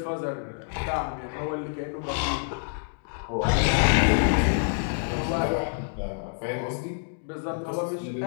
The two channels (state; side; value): silent; right; digital silence